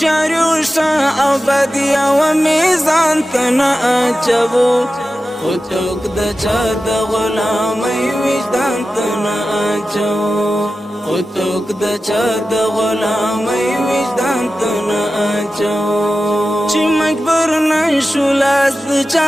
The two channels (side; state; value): both; normal; correlation 0.93